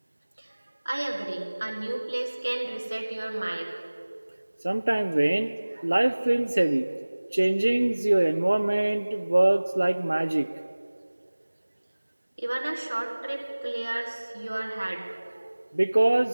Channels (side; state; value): both; inverted; correlation -1.00